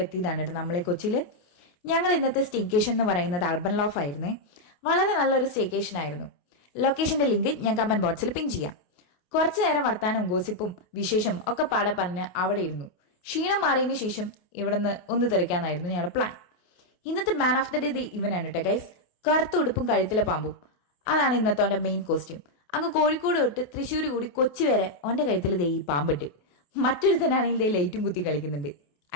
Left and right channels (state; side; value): late; right; 28 ms